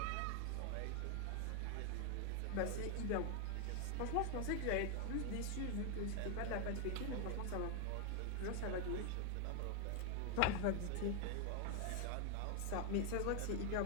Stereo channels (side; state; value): both; different; correlation 0.01